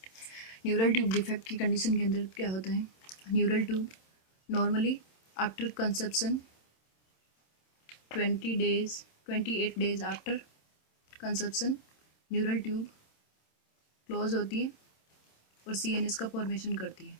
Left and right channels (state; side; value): late; right; 27 ms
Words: Neural tube defect की कंडीशन के अंदर क्या होता है? Neural tube normally after conception 28 days after conception neural tube close होती है और CNS का फॉर्मेशन करती है।